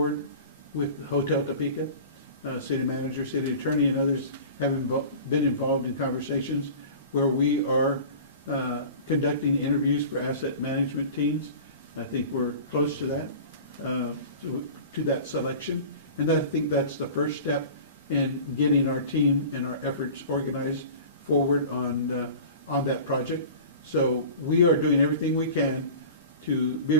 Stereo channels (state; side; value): inverted; both; correlation -0.39